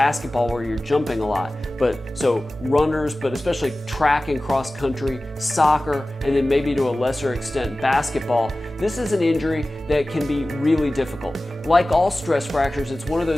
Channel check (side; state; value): both; normal; correlation 0.96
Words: where you're jumping a lot. So runners, but especially track and cross country, soccer, and then maybe to a lesser extent basketball, this is an injury that can be really difficult. Like all stress fractures, it's one of